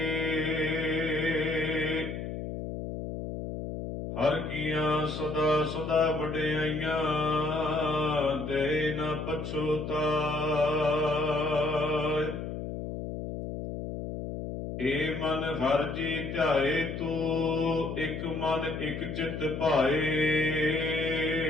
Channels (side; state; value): left; noise; hum, 6 dB below the sound